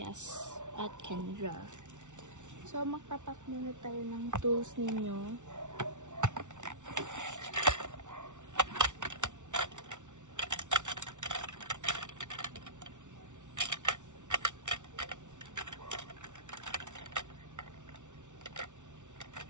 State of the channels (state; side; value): late; left; 0.86 ms